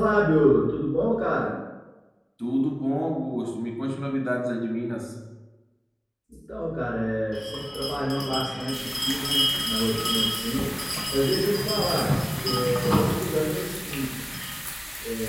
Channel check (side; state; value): both; identical; correlation 1.00